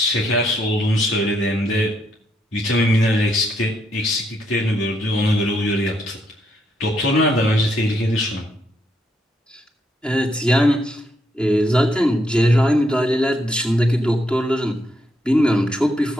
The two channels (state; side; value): normal; both; correlation 0.76